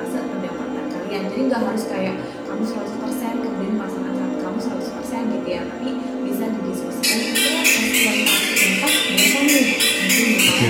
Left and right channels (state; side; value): identical; both; correlation 1.00